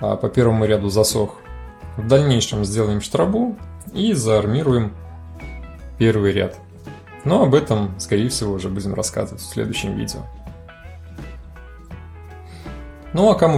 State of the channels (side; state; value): both; identical; correlation 1.00